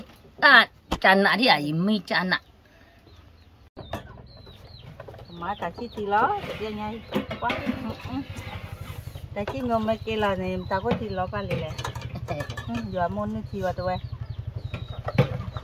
Chăn nạ đi à? Mi chăn nạ. Má ta chỉ thì lo, dia nhai quá. Ta chỉ ngom mấy cái là này ta có thì lo cả lệ. Giờ môn nó chi vào tụi.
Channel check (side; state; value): both; identical; correlation 1.00